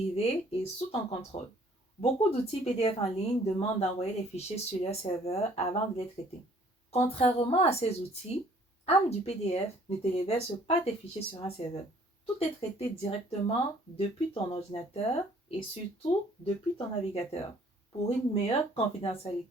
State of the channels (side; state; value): both; normal; correlation 0.58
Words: et sous ton contrôle. Beaucoup d'outils PDF en ligne demandent d'envoyer les fichiers sur leur serveur avant de les traiter. Contrairement à ces outils, AmDuPDF ne te verse pas tes fichiers sur un serveur. Tout est traité directement depuis ton ordinateur et surtout depuis ton navigateur pour une meilleure